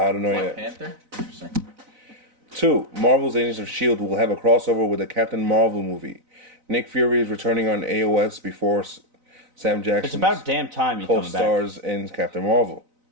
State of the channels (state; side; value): late; left; 4.0 ms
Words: don't know Black yet. Panther. Interesting. 2. Marvel's Agents of S.H.I.E.L.D. will have a crossover with the Captain Marvel movie. Nick Fury is returning on AOS before Sam Jackson. It's about damn time he comes back. Co-stars in Captain Marvel.